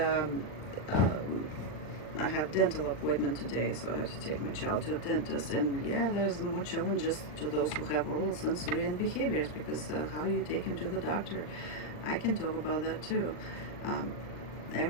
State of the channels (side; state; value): right; late; 40 ms